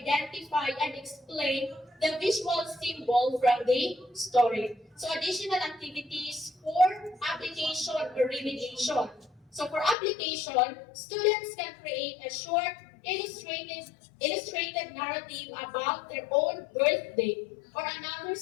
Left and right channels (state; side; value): drops out; right; at 10.0 s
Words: and explain the visual symbol from the story. So additional activities for application or remediation. So for application, students can create a short illustrated narrative about their own birthday or another